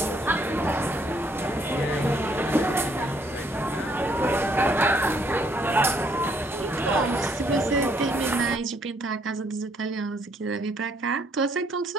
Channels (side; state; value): both; normal; correlation 0.68